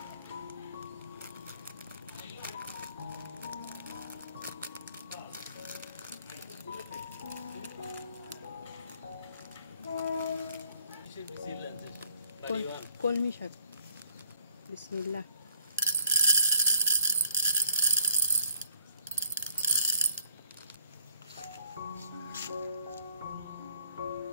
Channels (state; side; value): inverted; both; correlation -0.65